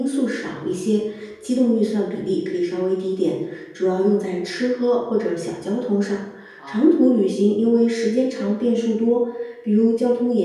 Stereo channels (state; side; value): identical; both; correlation 1.00